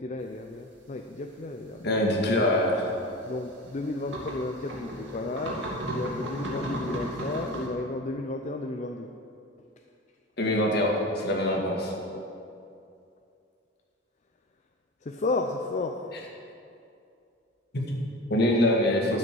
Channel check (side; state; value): both; normal; correlation 0.32